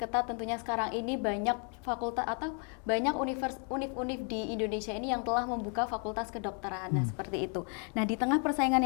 tentunya sekarang ini banyak fakultas atau banyak univ-univ di Indonesia ini yang telah membuka fakultas kedokteran. Nah, seperti itu. Nah, di tengah persaingan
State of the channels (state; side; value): quieter; right; 39.9 dB